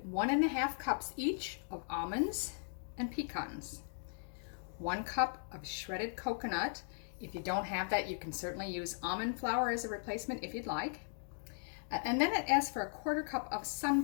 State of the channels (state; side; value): silent; right; digital silence